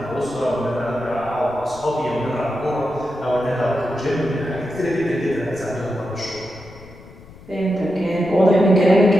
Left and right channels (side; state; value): left; noise; rumble, 20 dB below the sound